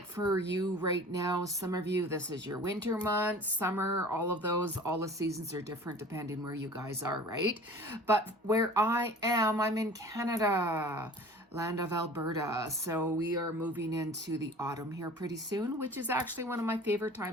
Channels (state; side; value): normal; both; correlation 0.43